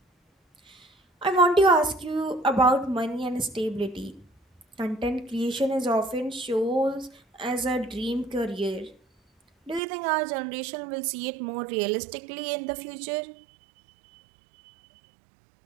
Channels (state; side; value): drops out; left; at 9.8 s